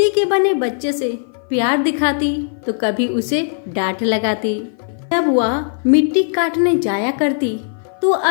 के बने बच्चे से प्यार दिखाती तो कभी उसे डांट लगाती। जब वह मिट्टी काटने जाया करती तो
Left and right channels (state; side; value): silent; right; 57 dB below the other